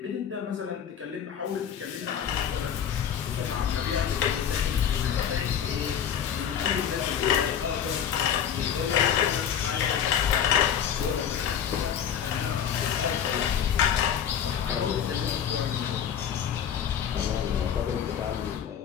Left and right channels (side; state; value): right; quieter; 8.7 dB